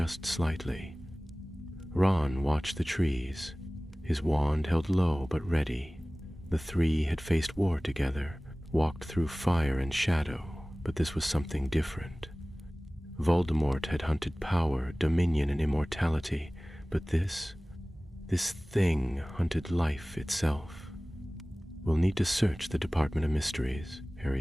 slightly. Ron watched the trees, his wand held low but ready. The three had faced war together, walked through fire and shadow, but this was something different. Voldemort had hunted power, dominion, and immortality, but this thing hunted life itself. "We'll need to search the Department of Mysteries,"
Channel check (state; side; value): normal; both; correlation 0.98